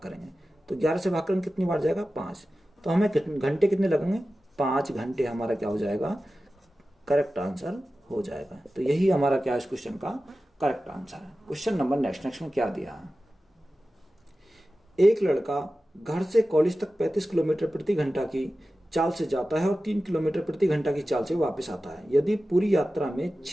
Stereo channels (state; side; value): normal; both; correlation 0.94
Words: करेंगे। तो 11 से भाग करेंगे कितनी बार जाएगा? 5। तो हमें घंटे कितने लगेंगे? 5 घंटे हमारा क्या हो जाएगा? करेक्ट आंसर हो जाएगा। तो यही हमारा क्या है इस क्वेश्चन का करेक्ट आंसर है। क्वेश्चन नंबर नेक्स्ट में क्या दिया है? एक लड़का घर से कॉलेज तक 35 किलोमीटर प्रति घंटा की चाल से जाता है और 3 किलोमीटर प्रति घंटा की चाल से वापस आता है। यदि पूरी यात्रा में